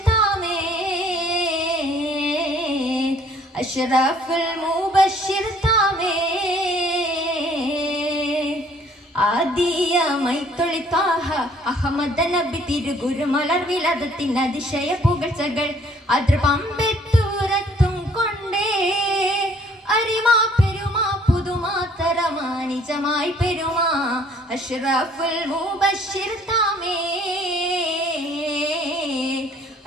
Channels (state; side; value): normal; both; correlation 0.60